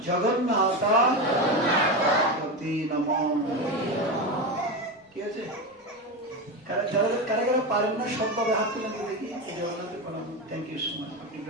जगन्नाथ नमः। যারা কারা কারা পারেন না সবভাবে হাত তুলে দিয়ে দেখি এই জগন্নাথের প্রণাম। Thank you so much. আপনি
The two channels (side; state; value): both; normal; correlation 0.17